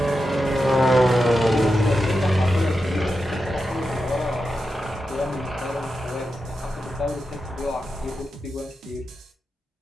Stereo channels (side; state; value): both; normal; correlation 0.89